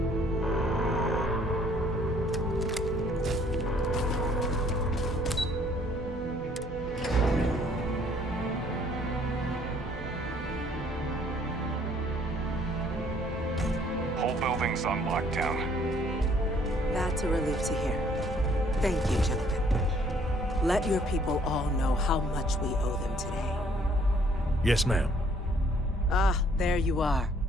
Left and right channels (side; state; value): both; normal; correlation 0.62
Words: everything's on lockdown. That's a relief to hear. Thank you, gentlemen. Let your people all know how much we owe them today. Yes, ma'am. Ah, there you are.